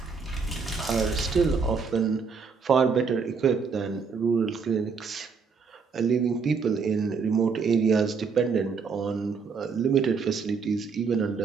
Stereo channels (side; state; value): left; quieter; 5.3 dB